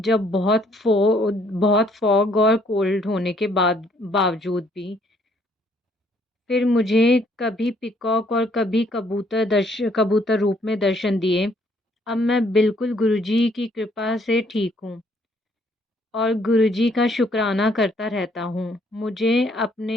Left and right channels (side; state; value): both; normal; correlation 0.65